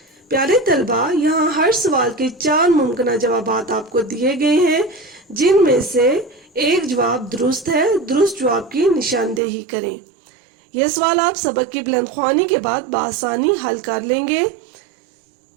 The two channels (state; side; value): drops out; left; at 9.4 s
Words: پیارے طلبہ، یہاں ہر سوال کے 4 ممکنہ جوابات آپ کو دیے گئے ہیں جن میں سے ایک جواب درست ہے. درست جواب کی نشاندہی کریں. یہ سوال آپ سبق کی بلند خوانی کے بعد بآسانی حل کر لیں گے.